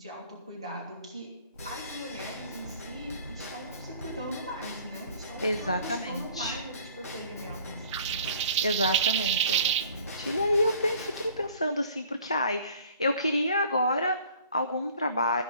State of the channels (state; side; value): inverted; both; correlation -0.52